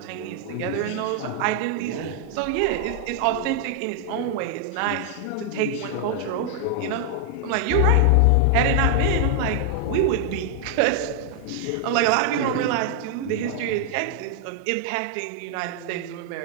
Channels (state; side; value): different; both; correlation 0.00